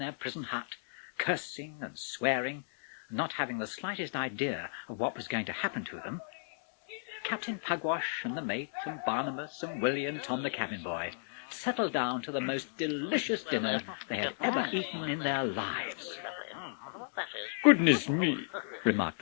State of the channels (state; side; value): silent; right; digital silence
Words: prison hut, cursing and swearing, not having the slightest idea of what was going to happen to them, Captain Pugwash and the mate and Barnabas and Willie and Tom the Cabinboy settled down to the most delicious dinner they had ever eaten in their lives. "Goodness me," remarked